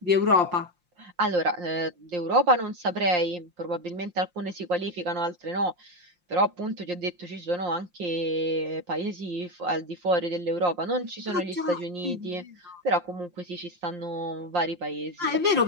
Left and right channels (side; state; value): left; late; 5.7 ms